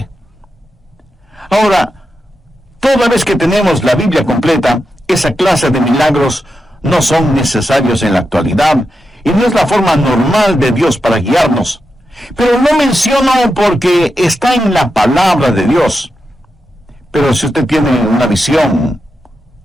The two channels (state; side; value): normal; both; correlation 0.88